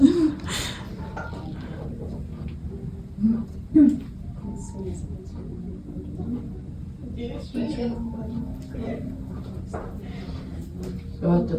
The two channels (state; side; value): identical; both; correlation 1.00